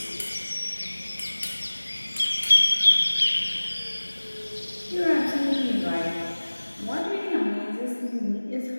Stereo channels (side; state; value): both; inverted; correlation -1.00